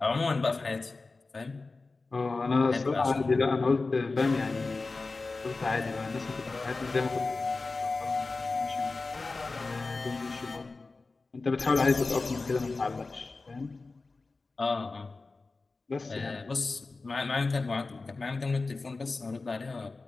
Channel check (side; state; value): right; quieter; 3.7 dB